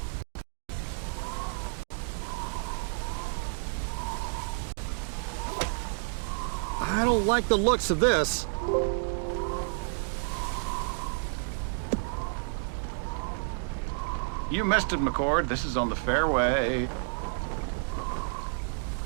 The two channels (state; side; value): silent; left; digital silence